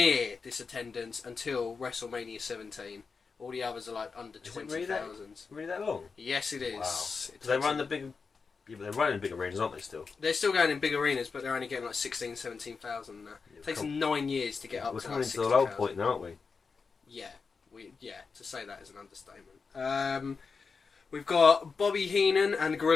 this attendance until WrestleMania 17. All the others are like under 20,000. Really that long? Yes, it is. Wow. They run the big... Yeah, but they're running big arenas, aren't they, still? They're still going in big arenas, but they're only getting like 16,000, 17,000 now. It takes them 9 years to get up to like 60,000. We're coming to the low point now, aren't we? Yeah. To say that is an understatement. We've got Bobby Heenan and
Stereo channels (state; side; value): quieter; right; 5.0 dB